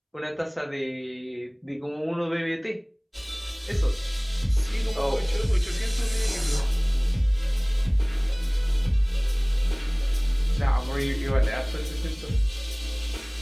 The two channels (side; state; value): both; identical; correlation 1.00